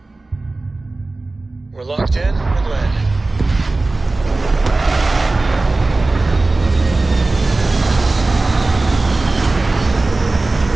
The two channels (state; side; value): quieter; left; 3.2 dB